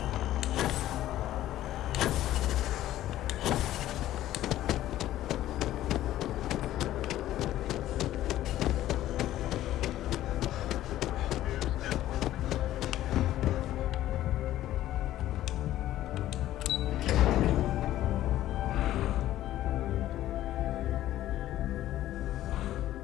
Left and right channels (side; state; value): right; quieter; 13.7 dB